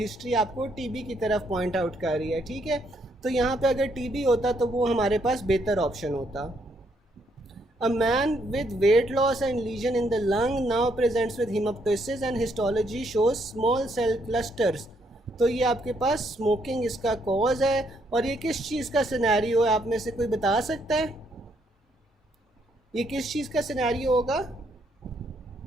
आपको टीबी की तरफ पॉइंट आउट कर रही है. ठीक है, तो यहाँ पे अगर टीबी होता तो वो हमारे पास बेहतर ऑप्शन होता. A man with weight loss and lesion in the lung now presents with hemoptysis and histology shows small cell clusters. तो ये आपके पास स्मोकिंग इसका कॉज है. और ये किस चीज़ का सिनेरियो है, आप में से कोई बता सकता है ये किस चीज़ का सिनेरियो होगा?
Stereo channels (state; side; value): normal; both; correlation 0.73